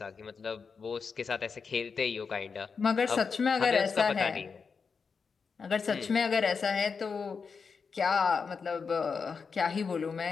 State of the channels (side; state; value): right; quieter; 5.4 dB